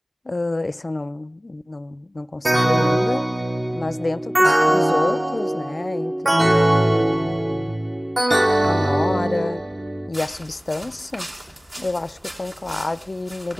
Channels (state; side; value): normal; both; correlation 0.98